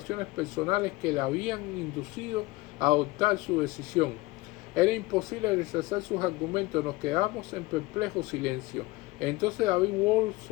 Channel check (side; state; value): right; quieter; 20.7 dB